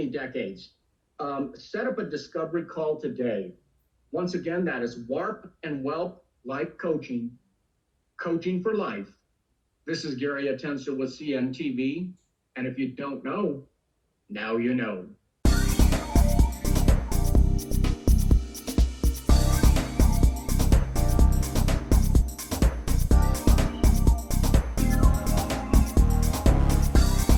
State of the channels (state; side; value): identical; both; correlation 1.00